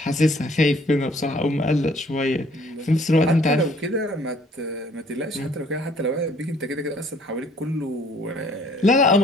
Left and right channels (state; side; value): normal; both; correlation 0.59